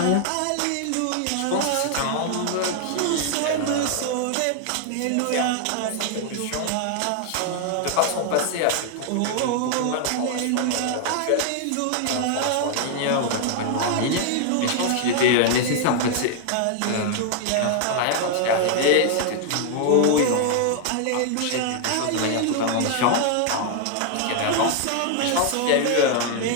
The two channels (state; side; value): different; both; correlation 0.00